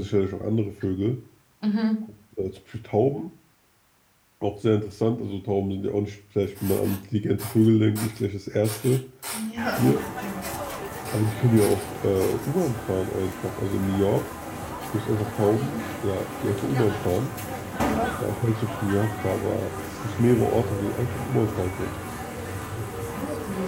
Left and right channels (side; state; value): both; identical; correlation 1.00